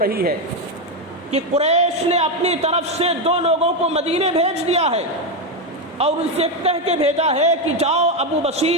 ہے کہ قریش نے اپنی طرف سے 2 لوگوں کو مدینے بھیج دیا ہے اور ان سے کہہ کے بھیجا ہے کہ جاؤ ابو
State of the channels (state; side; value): normal; both; correlation 0.08